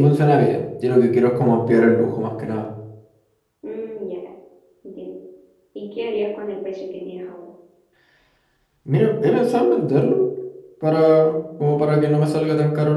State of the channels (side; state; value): both; identical; correlation 1.00